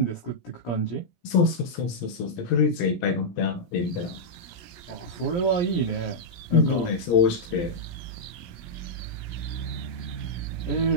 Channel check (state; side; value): late; right; 17 ms